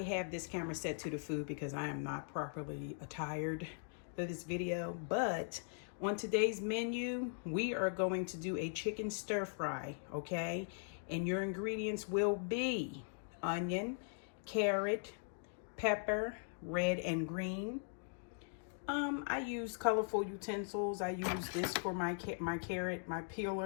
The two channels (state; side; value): silent; right; digital silence